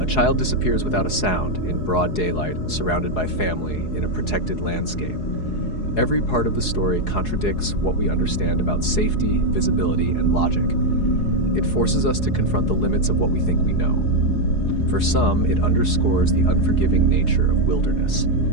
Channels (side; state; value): right; late; 4.7 ms